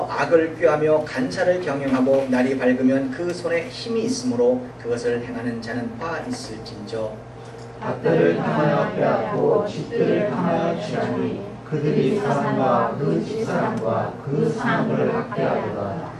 악을 꾀하며 간사를 경영하고 날이 밝으면 그 손에 힘이 있으므로 그것을 행하는 자는 화 있을진저. 밭들을 향하여 빼앗고 집들을 향하여 취하니 그들이 사람과 그 집사람과 그 사람을 학대하도다.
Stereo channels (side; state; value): both; identical; correlation 1.00